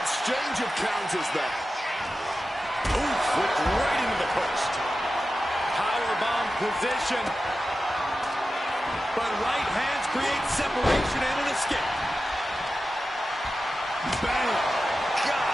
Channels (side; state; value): both; normal; correlation 0.93